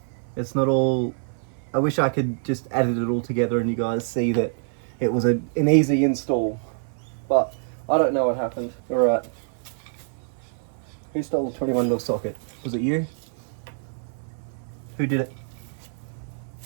It's not all. I wish I could just edit it all together and you guys see that it was an easy install, but I don't know what happened. All right. Who stole the 21mm socket? Was it you? Who did it?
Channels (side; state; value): left; silent; 56 dB below the other